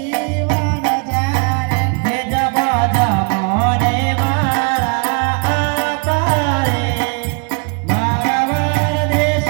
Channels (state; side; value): quieter; left; 35.5 dB